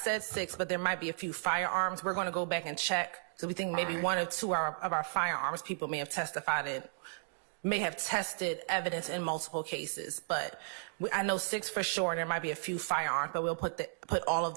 6, but there might be a few firearms. We're going to go back and check. So we think maybe 1 or 2 of our firearms people may have testified in, may have tested evidence in multiple cases. But I know 6 for sure, and there might be a few firearms, but we'll put all of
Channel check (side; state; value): left; silent; digital silence